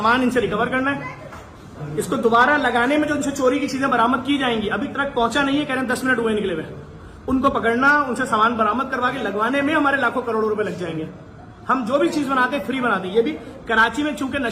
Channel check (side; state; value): both; identical; correlation 1.00